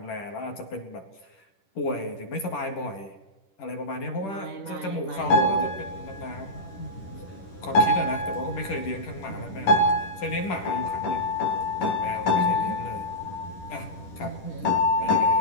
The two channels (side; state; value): right; late; 10 ms